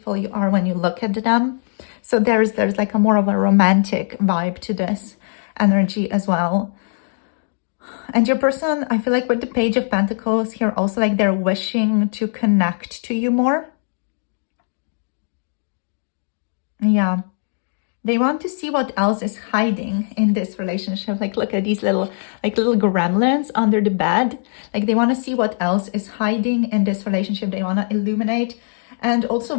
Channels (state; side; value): silent; right; digital silence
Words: you are when you look at them. So there's like a more of a romantic vibe to this energy as well. And your person, I feel like with the Page of Pentacles here also, like they're wishing to connect to you more. Yeah. They want to see what else is hiding in this relationship. Like, look at these little gremlins under the bed. Like, they want to see what else is hiding in this relationship. They want to illuminate and also